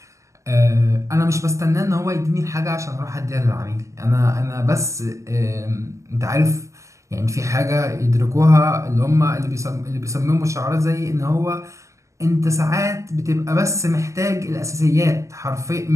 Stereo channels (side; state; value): left; late; 0.15 ms